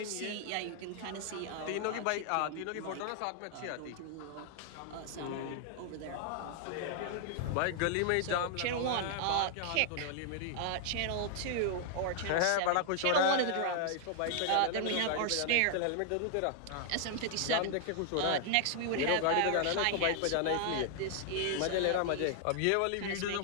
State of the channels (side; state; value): both; different; correlation 0.00